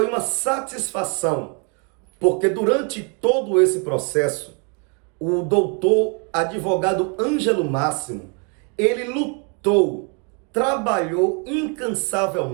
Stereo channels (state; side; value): quieter; left; 36.5 dB